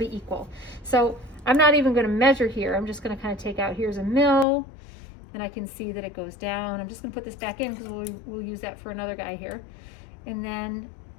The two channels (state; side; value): drops out; right; at 4.5 s